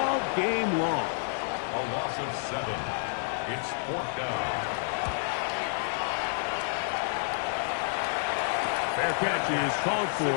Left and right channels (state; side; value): silent; right; 55 dB below the other